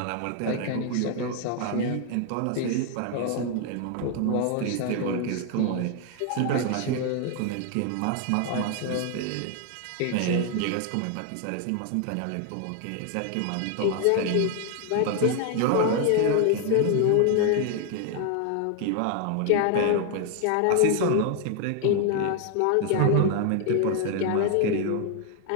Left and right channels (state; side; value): different; both; correlation 0.00